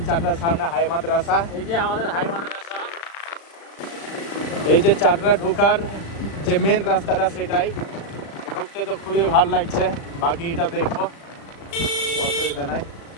চাটরার সামনে হাই মাদ্রাসা। এই যে আমাদের হাই মাদ্রাসা। এই যে চাটরা ঢোকার যে মেন রাস্তাটা, সেটাই ঢুকতে তো খুবই ভালো লাগছে। বাকিটা দেখবো, অসুবিধা নাই।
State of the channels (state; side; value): late; right; 36 ms